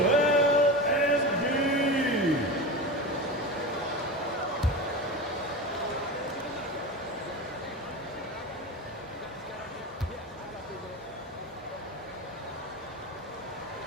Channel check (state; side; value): normal; both; correlation 0.26